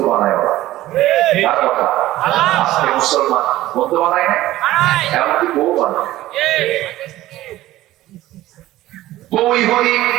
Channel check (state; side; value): quieter; left; 15.7 dB